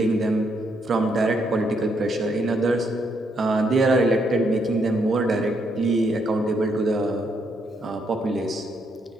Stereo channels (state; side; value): normal; both; correlation 0.75